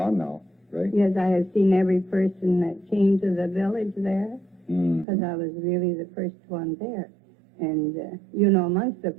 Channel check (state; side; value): drops out; left; at 5.1 s